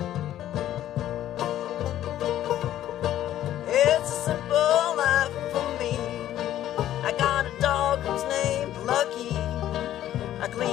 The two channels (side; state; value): right; quieter; 12.4 dB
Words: It's a simple life for me. I got a dog who's named Lucky. I